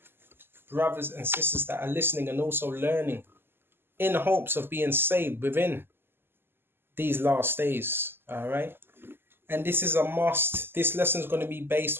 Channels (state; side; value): late; left; 0.11 ms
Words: brothers and sisters that are listening and also learning in hopes of being saved within these last days. All right. And this is a must. This lesson is going to be